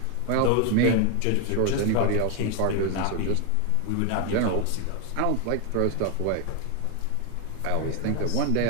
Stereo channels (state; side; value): different; both; correlation 0.01